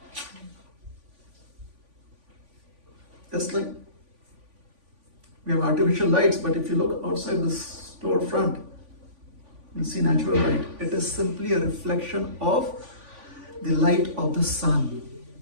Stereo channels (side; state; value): left; late; 3.5 ms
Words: Just like we have artificial lights, but if you look outside the storefront, You see natural light. It is simply a reflection of the light of the sun.